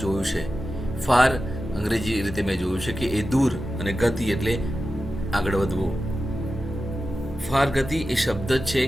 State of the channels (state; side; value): normal; both; correlation 0.93